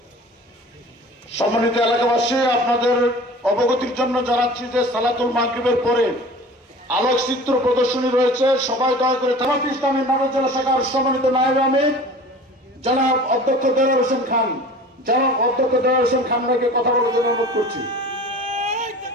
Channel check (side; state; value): both; normal; correlation 0.42